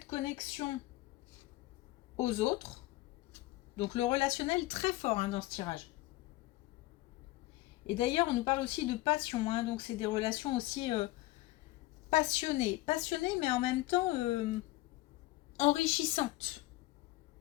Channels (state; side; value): quieter; right; 18.5 dB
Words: connexion aux autres, donc le relationnel très fort dans ce tirage. Et d'ailleurs on nous parle aussi de passion, donc c'est des relations aussi passionnées mais en même temps enrichissantes.